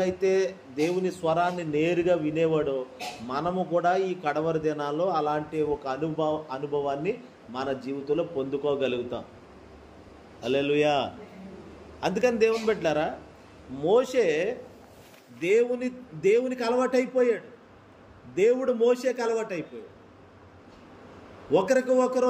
దేవుని స్వరాన్ని నేరుగా వినేవాడో, మనము కూడా ఈ కడవరి దినాల్లో అలాంటి ఒక అనుభవాన్ని మన జీవితంలో పొందుకోగలుగుతాం. హల్లెలూయా. అందుకని దేవుని బిడ్డలారా, మోషే దేవునికి అలవాటైపోయాడు, దేవుడు మోషేకి అలవాటైపోయాడు. ఒకరికి ఒకరు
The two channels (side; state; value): both; identical; correlation 1.00